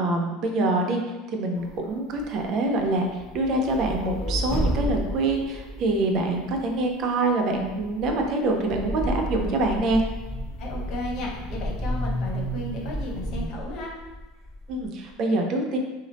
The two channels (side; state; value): both; normal; correlation 0.41